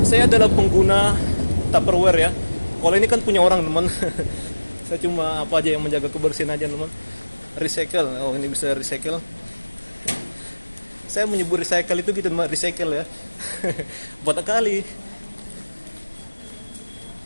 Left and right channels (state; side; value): inverted; both; correlation -1.00